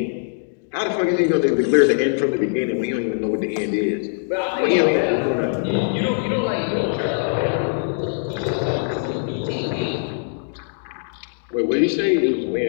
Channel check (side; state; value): right; silent; digital silence